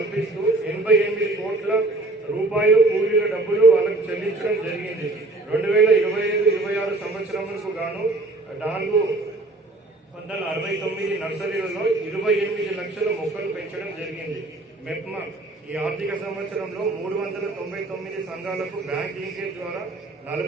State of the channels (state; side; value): quieter; left; 3.0 dB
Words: 88 కోట్ల రూపాయలు కూలీల డబ్బులు వాళ్ళకు చెల్లించడం జరిగింది. 2025-26 సంవత్సరములకు గాను 469 నర్సరీలలో 28 లక్షల మొక్కలు పెంచడం జరిగింది. మెప్మా ఈ ఆర్థిక సంవత్సరంలో 399 సంఘాలకు బ్యాంక్ లింకేజ్ ద్వారా